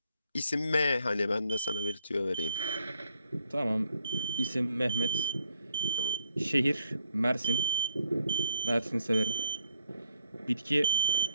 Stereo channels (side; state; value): both; inverted; correlation -0.67